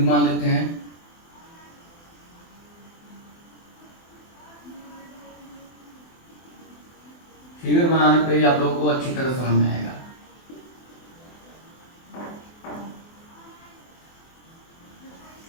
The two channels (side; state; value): right; late; 24 ms